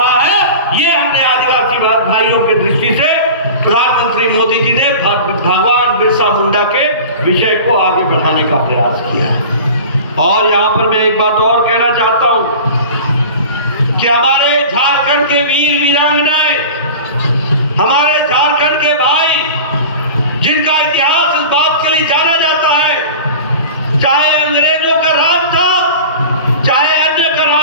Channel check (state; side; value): inverted; both; correlation -0.36